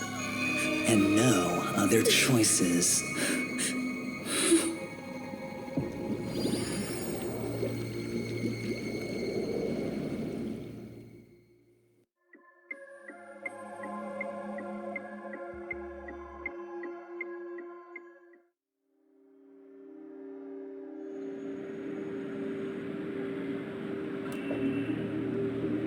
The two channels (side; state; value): both; identical; correlation 1.00